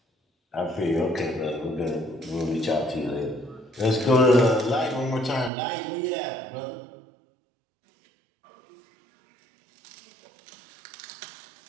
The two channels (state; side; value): drops out; left; at 5.5 s